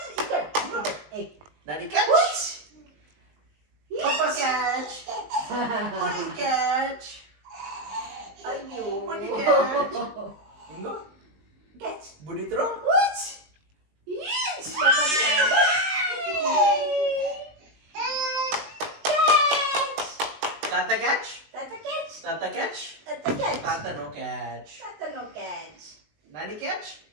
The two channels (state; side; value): late; left; 20 ms